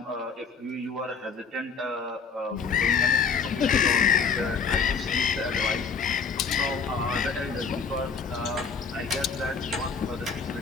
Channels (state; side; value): quieter; right; 5.5 dB